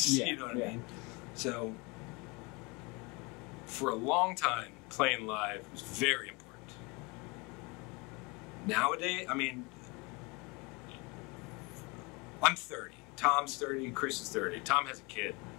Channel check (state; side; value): quieter; right; 27.7 dB